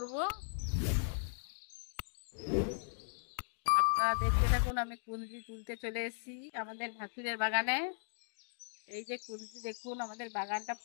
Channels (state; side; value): silent; right; digital silence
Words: আপনারা দেখতে থাকুন। আমি কুন্দলি তুলতে চলে এসেছি আমাদের ভাসুরের বাগানে। এই যে কুন্দলি দেখুন, আমাদের বাগানটা